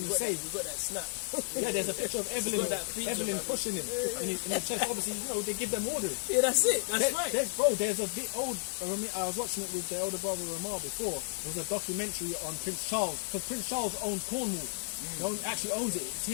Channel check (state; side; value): silent; right; digital silence